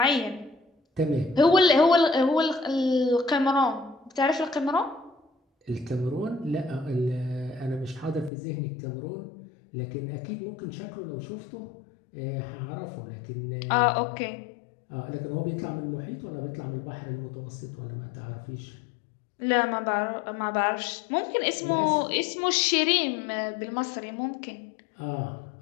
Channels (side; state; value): right; drops out; at 8.3 s